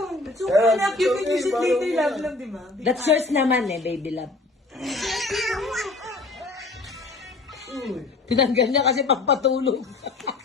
So, anak, you can use it later, love lang, di ba? That's yours naman eh, baby love. Tinanggal niya kasi pagpatulog.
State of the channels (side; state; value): right; quieter; 3.3 dB